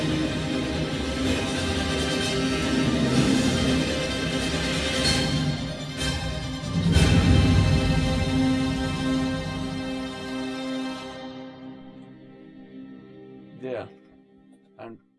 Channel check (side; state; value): both; identical; correlation 1.00